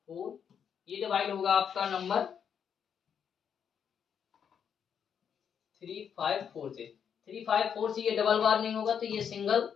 ये डिवाइड होगा आपका नंबर 354 से। 354 से ये डबल बार नहीं होगा, तो ये सिंगल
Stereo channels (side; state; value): right; quieter; 7.7 dB